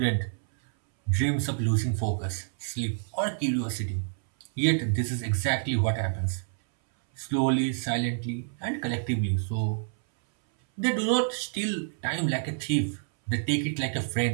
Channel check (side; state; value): left; silent; 59 dB below the other